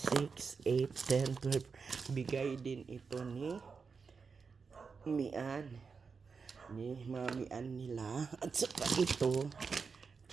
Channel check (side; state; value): left; quieter; 5.2 dB